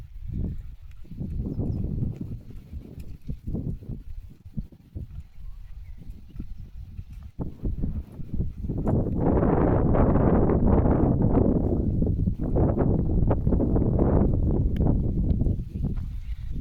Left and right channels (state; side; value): identical; both; correlation 1.00